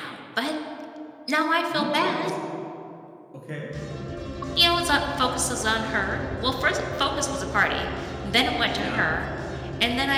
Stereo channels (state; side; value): identical; both; correlation 1.00